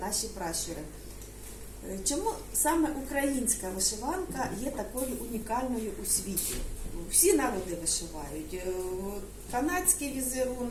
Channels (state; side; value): identical; both; correlation 1.00